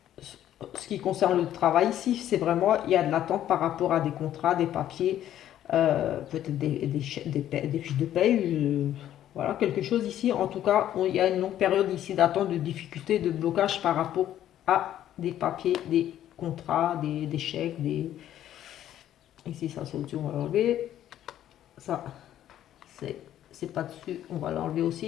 ce qui concerne le travail ici, c'est vraiment, il y a de l'attente par rapport à des contrats, des papiers, peut-être des fiches de paye, voilà, quelque chose ici. En tout cas, il y a une longue période ici d'attente, de difficulté, de blocage par rapport à des papiers, des contrats, des chèques, des... Ici, ça, c'est au-dessus, on va l'enlever. Ça, c'est pas dessus, on va l'enlever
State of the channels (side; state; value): right; quieter; 11.7 dB